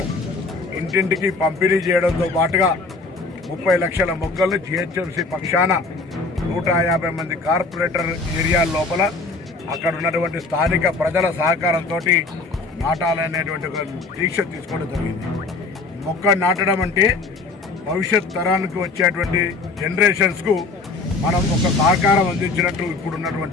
ఇంటింటికి పంపిణీ చేయడంతో పాటుగా 30 లక్షల మొక్కలను జిహెచ్ఎంసీ పక్షాన 150 మంది కార్పొరేటర్ ఏరియా లోపల అక్కడ ఉన్నటువంటి స్థానిక ప్రజల సహకారంతో నాటాలనేటువంటి ఒక దీక్ష తీసుకోవడం జరిగింది. మొక్క నాటడం అంటే భవిష్యత్ తరానికి వచ్చేటువంటి జనరేషన్స్కు మనం ఒక సహకారం అందించినట్టు ఇప్పుడు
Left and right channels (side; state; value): right; quieter; 3.7 dB